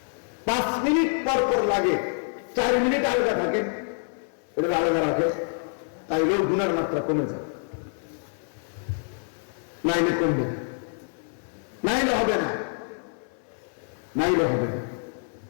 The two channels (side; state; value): right; silent; 60 dB below the other